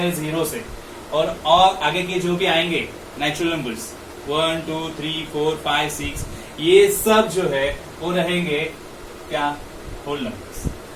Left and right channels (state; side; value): identical; both; correlation 1.00